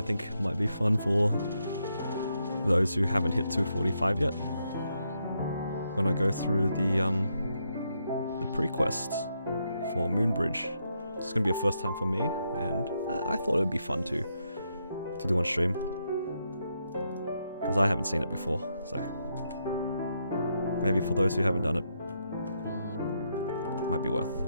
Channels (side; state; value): both; inverted; correlation -0.80